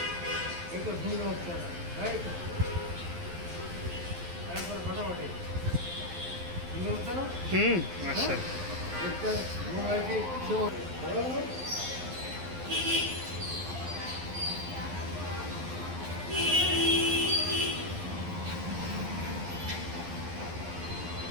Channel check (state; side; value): late; left; 11 ms